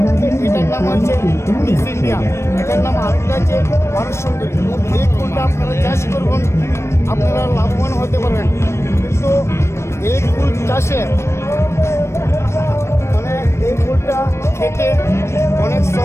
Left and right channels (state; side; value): late; right; 0.13 ms